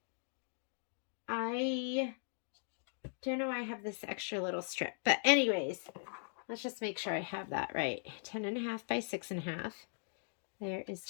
I don't know why I have this extra little strip. But anyways, let's just make sure I have that right. 10.5 by 6.5. There is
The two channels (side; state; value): right; silent; digital silence